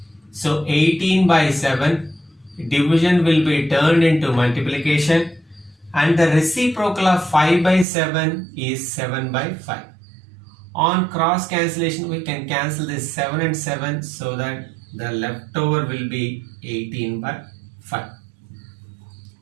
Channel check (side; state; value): left; drops out; at 7.9 s